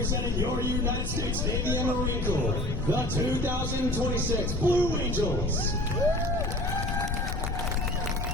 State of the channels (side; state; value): left; noise; rumble, 5 dB below the sound